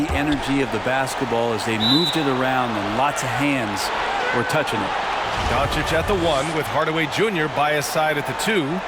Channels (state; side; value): identical; both; correlation 1.00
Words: energy of the basketball as they moved it around, and lots of hands were touching it. Doncic at the 1 with Hardaway Jr. by his side at the 2.